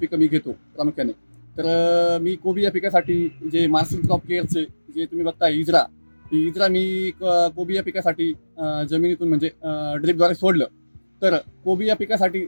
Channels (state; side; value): inverted; both; correlation -1.00